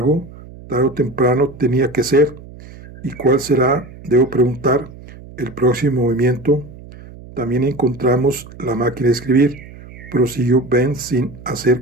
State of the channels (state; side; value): noise; right; hum, 18 dB below the sound